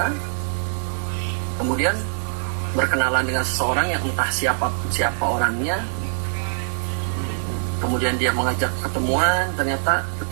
kemudian berkenalan dengan seseorang yang entah siapa orangnya. Kemudian dia mengajak ketemuan, ternyata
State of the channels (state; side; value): silent; left; 63 dB below the other